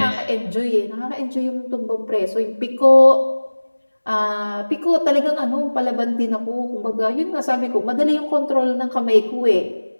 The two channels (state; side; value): inverted; both; correlation -1.00